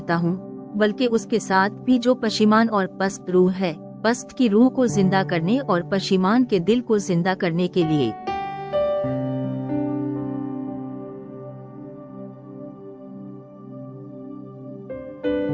हूँ, बल्कि उसके साथ भी जो पशिमान और पस्त रूह है, पस्त की रूह को जिंदा करने और पशिमान के दिल को जिंदा करने के लिए।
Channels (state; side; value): identical; both; correlation 1.00